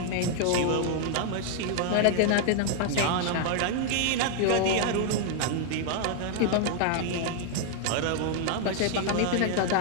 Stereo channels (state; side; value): different; both; correlation 0.00